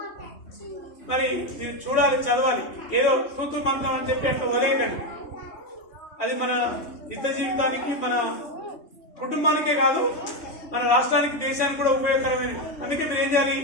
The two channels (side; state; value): right; late; 3.1 ms